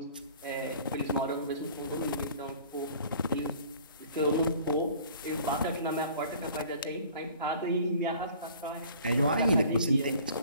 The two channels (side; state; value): both; inverted; correlation -0.50